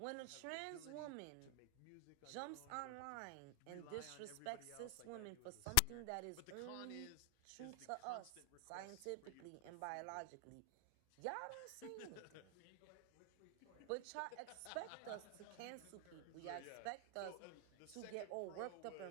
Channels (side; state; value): both; different; correlation 0.00